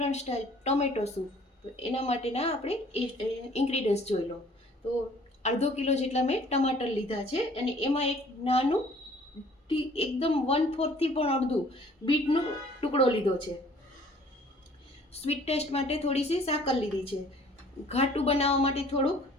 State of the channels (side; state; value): both; normal; correlation 0.55